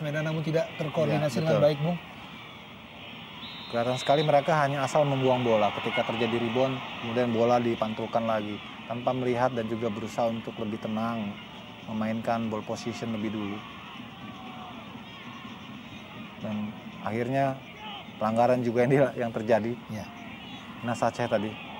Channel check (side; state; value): both; identical; correlation 1.00